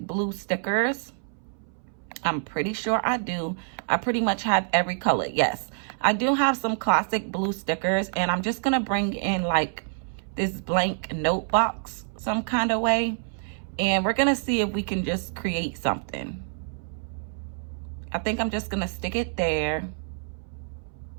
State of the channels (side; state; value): left; silent; 60 dB below the other